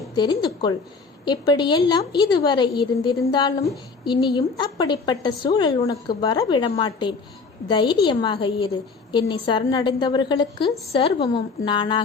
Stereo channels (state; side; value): quieter; right; 4.6 dB